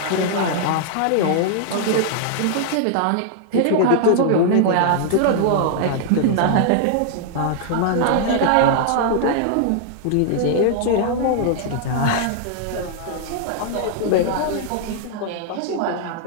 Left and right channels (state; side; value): different; both; correlation -0.01